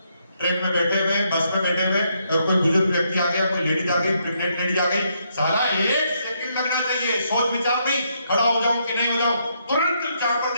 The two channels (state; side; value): inverted; both; correlation -0.75